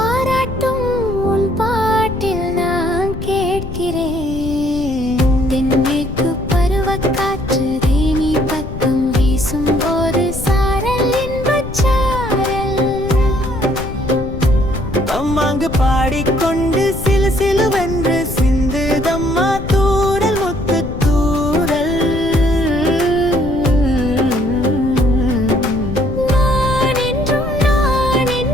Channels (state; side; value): noise; left; rumble, 9 dB below the sound